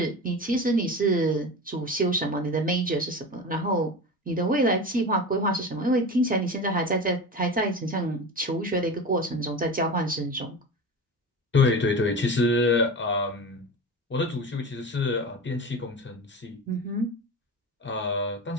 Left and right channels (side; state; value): both; normal; correlation 0.28